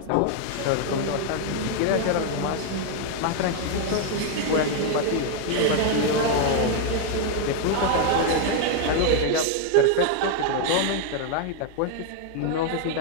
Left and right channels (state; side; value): different; both; correlation 0.00